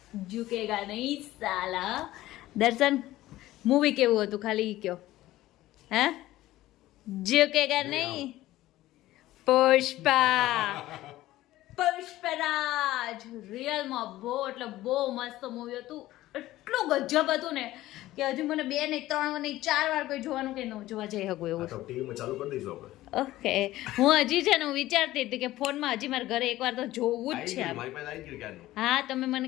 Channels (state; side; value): quieter; right; 15.9 dB